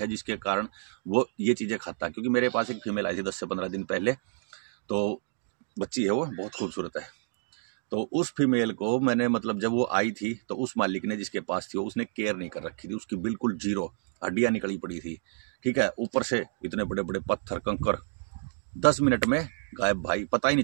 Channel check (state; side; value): silent; left; digital silence